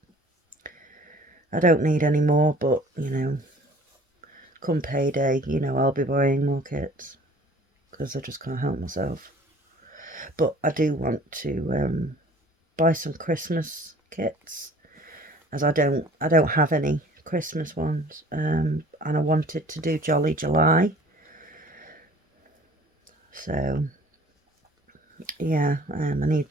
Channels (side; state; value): both; normal; correlation 0.50